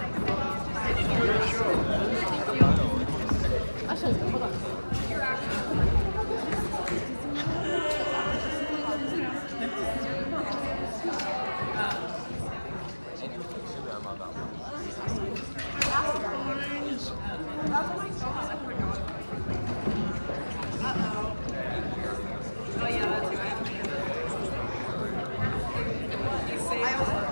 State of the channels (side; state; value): both; inverted; correlation -1.00